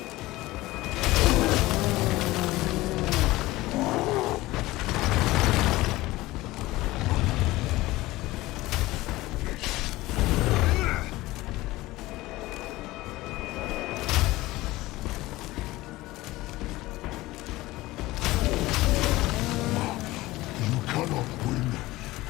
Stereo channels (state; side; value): quieter; right; 18.7 dB